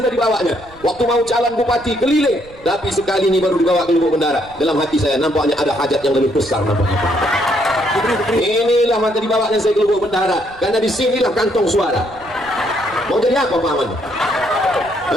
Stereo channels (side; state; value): right; noise; rumble, 23 dB below the sound